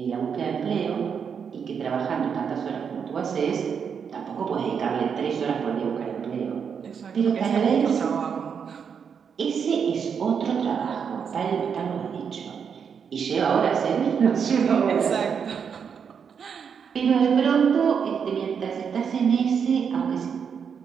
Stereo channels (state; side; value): quieter; left; 6.9 dB